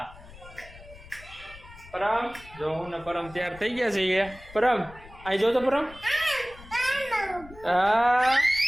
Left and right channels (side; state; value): left; noise; rumble, 19 dB below the sound